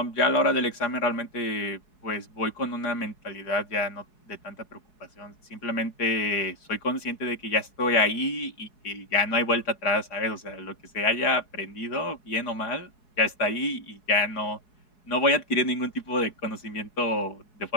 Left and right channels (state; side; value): late; right; 4.7 ms